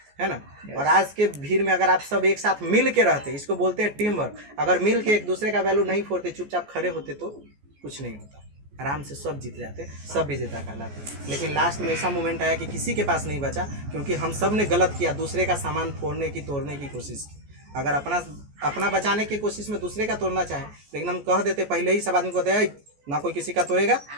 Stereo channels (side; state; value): left; late; 14 ms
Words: है ना? और आज के भीड़ में अगर आप सब एक साथ मिल के रहते, इसको बोलते हैं टीम वर्क। अगर मिल के एक दूसरे का वैल्यू नहीं फोड़ते, चुपचाप खड़े होते तो कुछ नहीं होता, आराम से सब जीत जाते, सब विजेता कहलाते। लेकिन लास्ट में ऐसा मोमेंट आया कि किसी के पास नहीं बचा, क्योंकि हम सब ने गलत किया, दूसरे का सामान फोड़ने की, तोड़ने की कोशिश। अगर अपना बचाने की कोशिश में दूसरे का तोड़ना चाहे, लेकिन हम कह देते पहले ही, सब आदमी को कहते हैं ना कोई किसी का तोड़ेगा